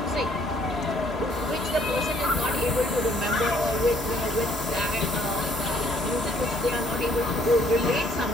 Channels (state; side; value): normal; both; correlation 0.65